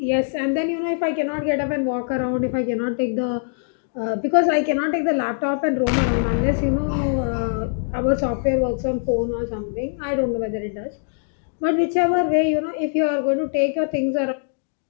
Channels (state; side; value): silent; right; digital silence